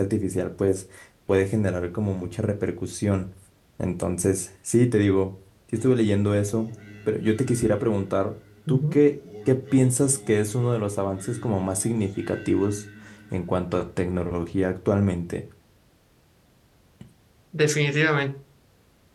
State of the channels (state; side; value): identical; both; correlation 1.00